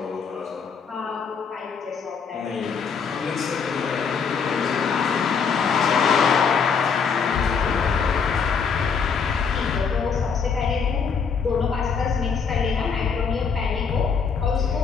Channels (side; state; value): right; quieter; 6.0 dB